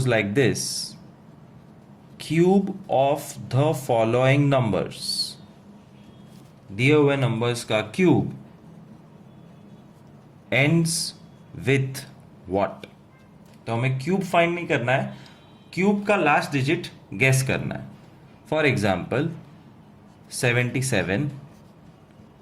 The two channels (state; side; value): identical; both; correlation 1.00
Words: like this: cube of the following numbers. दिए हुए नंबर्स का क्यूब ends with what? तो हमें क्यूब फाइंड नहीं करना है, क्यूब का लास्ट डिजिट गेस करना है. For example 77,